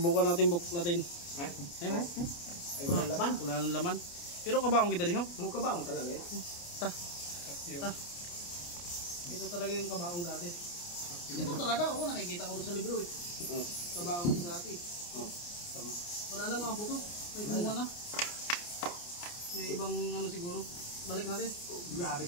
natin buklatin. Ay, Wala laman. wala nang laman. Pero kabaong kita rin ho. Mukha ba? Talaga yan. Ta. Ito talaga yung kabaong dati. Ito talaga ako nakikita ko sa libro eh. Kabaong sa dati. Tama. Wala na mga buto. May gumawa na. May ibang ano siguro. Balik natin. Grabe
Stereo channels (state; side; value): late; right; 29 ms